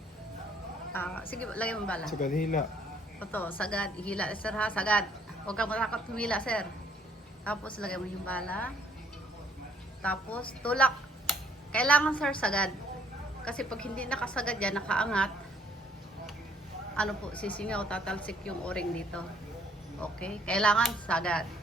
Sige, lagay mo bala. Sagad hila. Ito, sagad. Hila, sir ha, sagad. Huwag kang matakot humila, sir. Tapos, lagay mo yung bala. Tapos, tulak. Kailangan, sir, sagad. Kasi pag hindi nakasagad yan, nakaangat, ano po, sisingaw, tatalsik yung o-ring dito. Okay? Kailangan sagad.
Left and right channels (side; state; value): both; normal; correlation 0.63